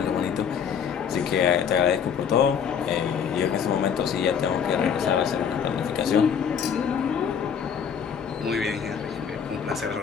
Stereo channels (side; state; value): right; quieter; 7.4 dB